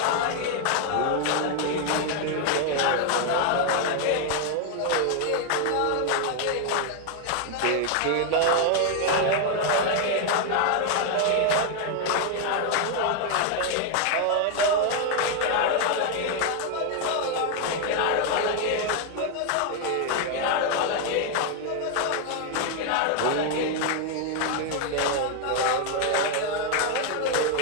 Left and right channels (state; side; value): different; both; correlation 0.01